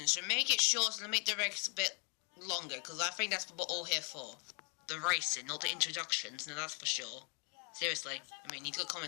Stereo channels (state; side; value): quieter; right; 38.1 dB